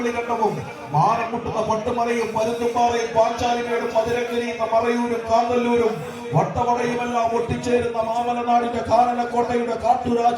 മാനം മുട്ടുന്ന പട്ടുമലയും പരുന്തുംപാറയും പാഞ്ചാലിമേടും മധുരക്കരിയുന്ന മറയൂരും കാന്തല്ലൂരും വട്ടവടയുമെല്ലാം ഒട്ടിച്ചേരുന്ന മാമലനാടിന്റെ കാനനക്കോട്ടയുടെ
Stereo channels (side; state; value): both; identical; correlation 1.00